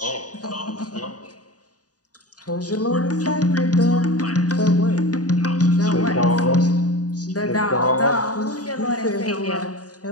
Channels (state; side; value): late; right; 0.68 ms